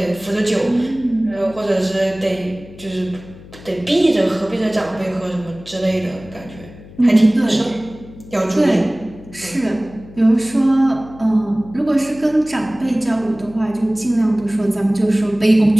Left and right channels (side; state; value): left; noise; hum, 19 dB below the sound